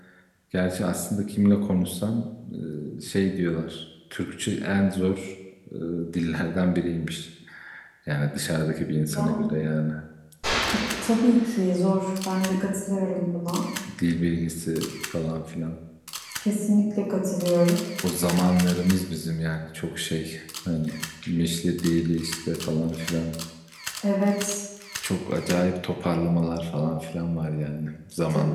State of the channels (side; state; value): both; identical; correlation 1.00